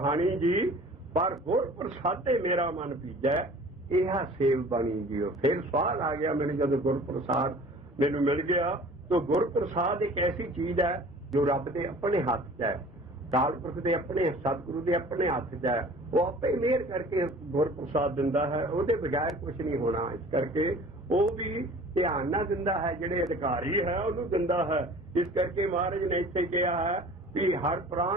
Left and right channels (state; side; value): normal; both; correlation 0.46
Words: ਜੀ। ਪਰ ਗੁਰ ਪ੍ਰਸਾਦੇ ਮੇਰਾ ਮਨ ਭਿੱਜਾ, ਇਹ ਸੇਵ ਬਣੀ ਜੀਓ। ਫਿਰ ਸਵਾਲ ਆ ਗਿਆ ਮੈਨੂੰ ਜਦੋਂ ਗੁਰ ਪ੍ਰਸਾਦ ਮੈਨੂੰ ਮਿਲ ਗਿਆ। ਤਾਂ ਗੁਰ ਪ੍ਰਸਾਦ ਇੱਕ ਐਸੀ ਚੀਜ਼ ਹੈ ਜੋ ਰੱਬ ਦੇ ਆਪਣੇ ਹੱਥ 'ਚ ਹੈ, ਅਕਾਲ ਪੁਰਖ ਦੇ ਆਪਣੇ, ਸਤਿਗੁਰੂ ਦੇ ਆਪਣੇ ਹੱਥ 'ਚ ਹੈ। ਉਹ ਆਪੇ ਮਿਹਰ ਕਰਕੇ ਗੁਰ ਪ੍ਰਸਾਦ ਦਿੰਦਾ ਹੈ, ਉਹਦੇ ਬਗੈਰ ਕੁਝ ਨਹੀਂ ਹੋਣਾ। ਇਸ ਕਰਕੇ ਉਹ ਵੀ ਧਿਆਨ ਨਾਲ ਦਿੰਦਾ ਹੈ, ਜਿਹੜੇ ਅਧਿਕਾਰੀ ਹੈ ਉਹਨੂੰ ਦਿੰਦਾ ਹੈ। ਇਸ ਕਰਕੇ ਮਹਾਰਾਜ ਨੇ ਇੱਥੇ ਕਿਹਾ ਹੈ ਵੀ ਹਰ